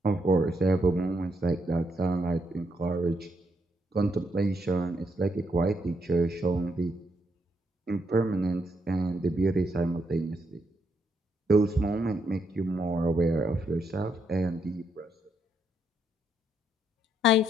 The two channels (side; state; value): both; normal; correlation 0.76